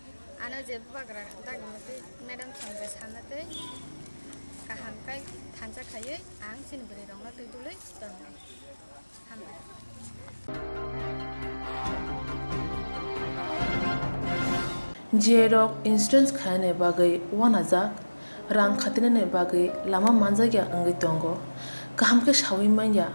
आनो जे बाग्रा दागमते मैडम संगे सानते गाहामखाय थानसा खायो आं sini beri rong बिदिलै दंनाय हामबाय Jerok instance khane bagai wanajak rang khatinane bagai lama manjagya angai tongo kaham ke shawi manya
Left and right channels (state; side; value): inverted; both; correlation -1.00